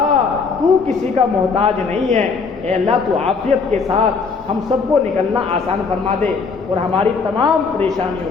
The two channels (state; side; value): quieter; right; 4.9 dB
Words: تو کسی کا محتاج نہیں ہے. اے اللہ تو عافیت کے ساتھ ہم سب کو نکلنا آسان فرما دے اور ہماری تمام